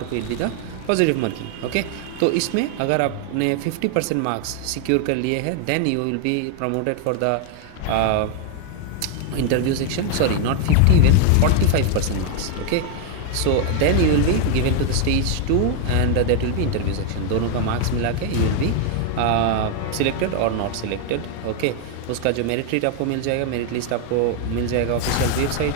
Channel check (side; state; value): both; different; correlation 0.01